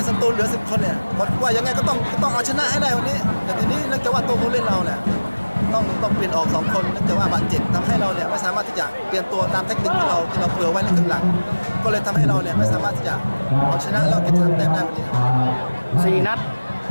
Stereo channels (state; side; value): inverted; both; correlation -1.00